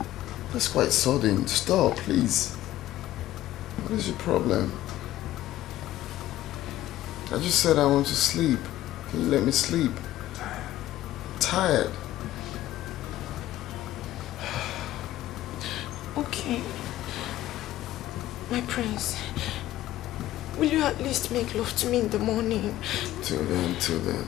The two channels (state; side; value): quieter; right; 14.5 dB